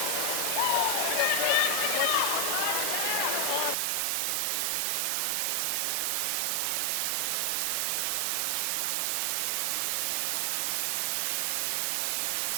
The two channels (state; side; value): drops out; left; at 3.8 s